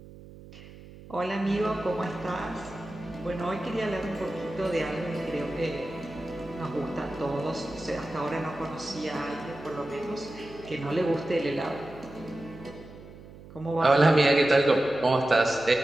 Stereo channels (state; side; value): noise; right; hum, 18 dB below the sound